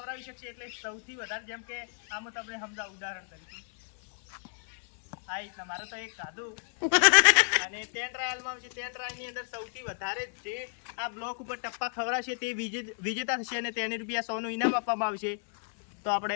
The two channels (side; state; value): right; silent; 57 dB below the other